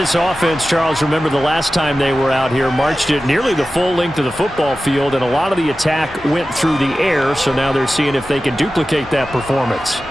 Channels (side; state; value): both; normal; correlation 0.94